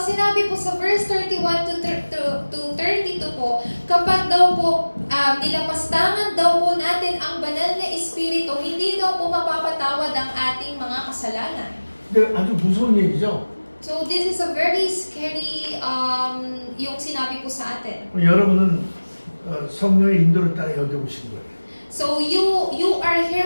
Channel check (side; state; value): both; inverted; correlation -1.00